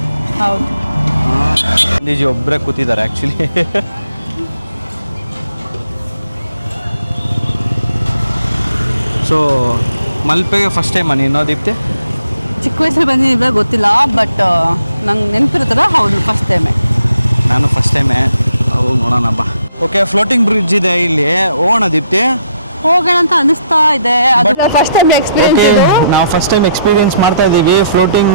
ಹೌದು, ಗಾಂಧೀಜಿ ಒಬ್ಬರೇ ಕೂತಿದ್ದಾರೆ ಆಕ್ಚುಲಿ. ಸೊ ಮಲ್ಪೆಗೆ ಫಸ್ಟ್ ಟೈಮ್ ನೀನು ದೀಪ್ತಿ? ಚಿಕ್ಕ ವಯಸ್ಸಲ್ಲಿ ಬಂದಿದ್ದ ಗೊತ್ತಿಲ್ಲ, ಬಟ್ ನಂಗೆ ನೆನಪಿರುತ್ತಲ್ಲ. ಹೌದು, ಫಸ್ಟ್ ಟೈಮೇ. ನಾನು ಫಸ್ಟ್ ಟೈಮೇ. ಹೋಗಿ ನೋಡೋಣ ಬಾ. ಓಕೆ, ಫ್ಲೋಟಿಂಗ್ ಬ್ರಿಡ್ಜ್ ಇದೆ ಇಲ್ಲಿ. ಹೋಗೋಣ ದೀಪ್ತಿ? ಹೋಗೋಣ ಅಂತ ಅನಿಸ್ತಾ ಇದೆ. First time experience. ನಾವು ಫಸ್ಟ್ ಟೈಮ್ ಎಕ್ಸ್ಪೀರಿಯನ್ಸ್ ಮಾಡ್ತಾ ಇದೀವಿ ಫ್ಲೋಟಿಂಗ್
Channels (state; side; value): inverted; both; correlation -0.75